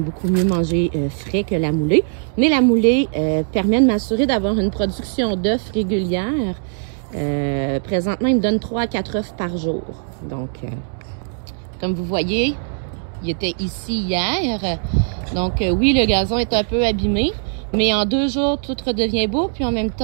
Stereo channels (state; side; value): silent; left; digital silence